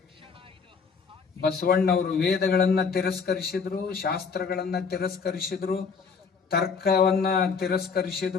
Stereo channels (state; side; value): quieter; right; 5.5 dB